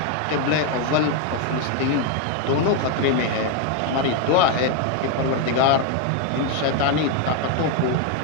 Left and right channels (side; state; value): both; different; correlation 0.01